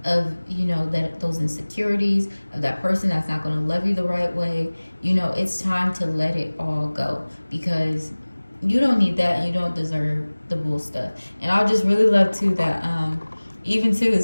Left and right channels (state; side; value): inverted; both; correlation -1.00